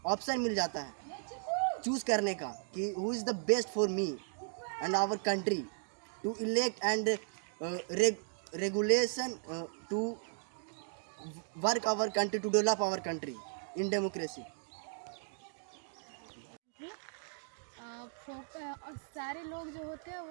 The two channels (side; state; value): left; silent; digital silence